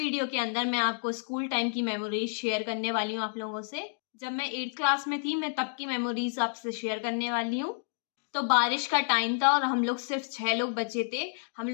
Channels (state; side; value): silent; right; digital silence